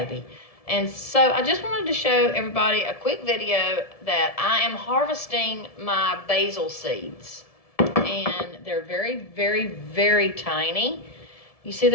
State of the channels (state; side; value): late; right; 1.7 ms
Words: And so I just wanted to show everybody a quick video that I am harvesting my basil seeds. And they're very, very, very tiny. You see